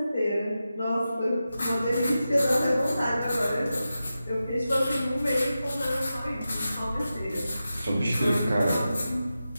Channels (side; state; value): both; inverted; correlation -0.92